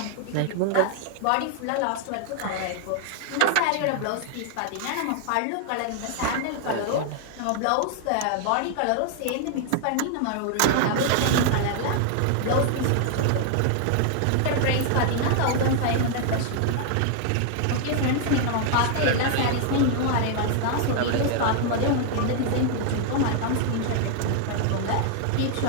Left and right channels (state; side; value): different; both; correlation 0.00